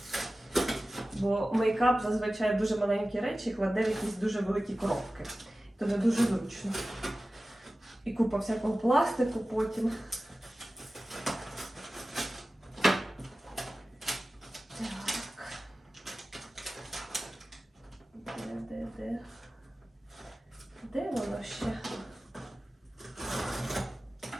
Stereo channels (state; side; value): normal; both; correlation 0.96